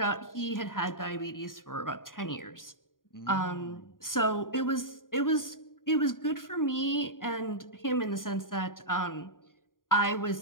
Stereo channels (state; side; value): late; right; 0.90 ms